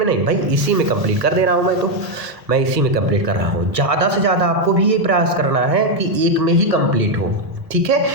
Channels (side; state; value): left; late; 1.3 ms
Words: नहीं भाई, इसी में कंप्लीट कर दे रहा हूँ मैं इसी में कंप्लीट कर रहा हूँ। ज़्यादा से ज़्यादा आपको भी ये प्रयास करना है कि एक में ही कंप्लीट हो। ठीक है,